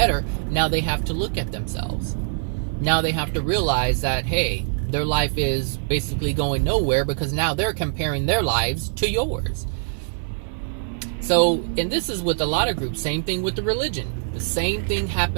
now they have to look at themselves. Now they have to realize that, hey, their life is basically going nowhere because now they're comparing their lives to yours. So, and this is with a lot of groups, same thing with the religion. The same thing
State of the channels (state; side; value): silent; left; 63 dB below the other